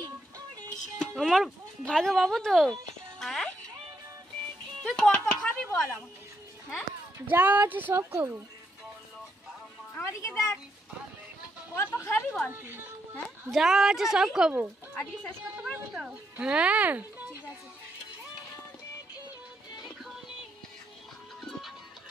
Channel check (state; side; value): normal; both; correlation 0.79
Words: আমার ভাগে বাবু তো। হ্যাঁ তুই কত খাবি বল আমাকে? হ্যাঁ যা আছে সব খাবো। আমাদিকে দেখ, কত খাবি বল তুই? হ্যাঁ যা আছে সব খাবো। আজকে শেষ করতে পারবি তো? হ্যাঁ ঠিক আছে।